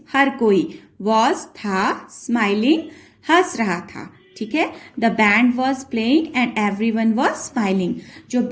हर कोई, वॉज था, स्माइलिंग हंस रहा था, ठीक है। The band was playing and everyone was smiling, जो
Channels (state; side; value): identical; both; correlation 1.00